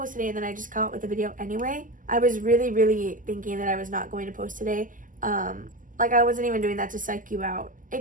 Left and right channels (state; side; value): late; left; 0.38 ms